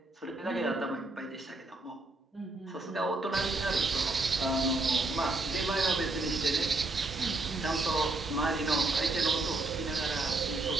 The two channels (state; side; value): quieter; left; 3.1 dB